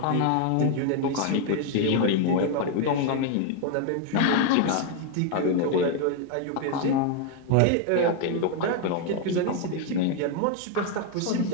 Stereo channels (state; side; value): different; both; correlation 0.01